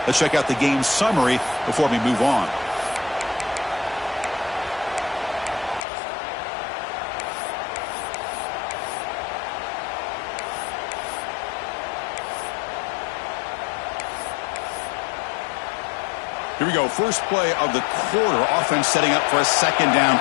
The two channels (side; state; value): right; drops out; at 5.9 s